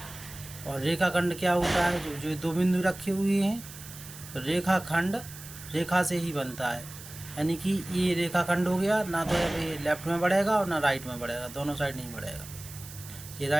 और रेखाखंड क्या होता है? जो दो बिंदु रखे हुए हैं। तो रेखाखंड रेखा से ही बनता है, यानी कि ये रेखाखंड हो गया ना, तो ये लेफ्ट में बढ़ेगा और ना राइट में बढ़ेगा, दोनों साइड नहीं बढ़ेगा। ये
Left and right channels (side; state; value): right; noise; hiss, 15 dB below the sound